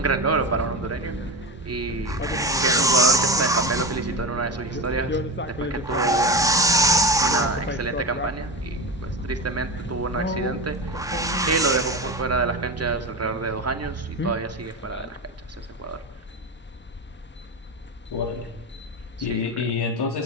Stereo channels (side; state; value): both; normal; correlation 0.22